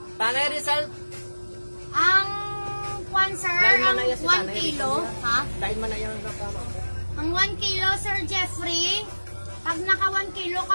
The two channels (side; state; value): both; inverted; correlation -1.00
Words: Tanay Rizal. Ang kwan, sir, ang 1 kilo, ha? Dahil man na yung nakama. Ang 1 kilo, Sir Jeffrey, pag naka 1 kilo